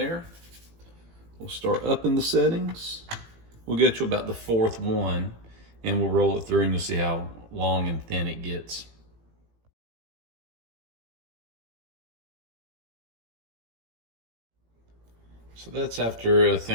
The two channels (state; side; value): late; left; 18 ms